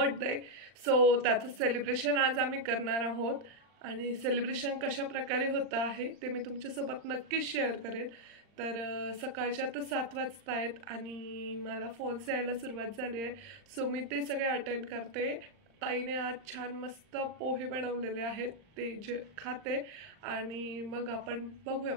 सो त्याचं सेलिब्रेशन आज आम्ही करणार आहोत आणि सेलिब्रेशन कशा प्रकारे होतं आहे ते मी तुमच्यासोबत नक्कीच शेअर करेन। तर सकाळच्या तर 7 वाजता आहेत आणि मला फोन्स यायला सुरुवात झाली आहे, सो मी ते सगळे अटेंड करते। ताईने आज छान मस्त पोहे बनवलेले आहेत, ते जे खाते आणि मग आपण बघूया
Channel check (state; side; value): late; left; 39 ms